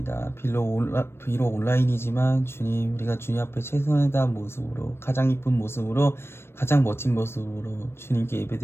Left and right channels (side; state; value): right; late; 0.12 ms